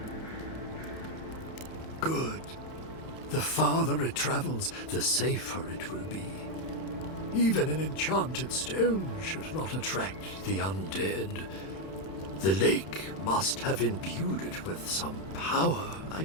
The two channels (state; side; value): late; right; 31 ms